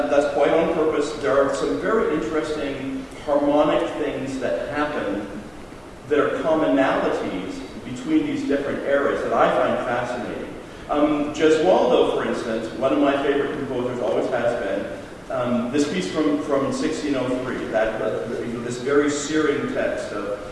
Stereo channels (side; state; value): both; identical; correlation 1.00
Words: quite on purpose. There are some very interesting harmonic things that happen that are commonalities between these different eras that I find fascinating. Gesualdo, for instance, one of my favorite composers, always has been. This piece from 1603, this very searing text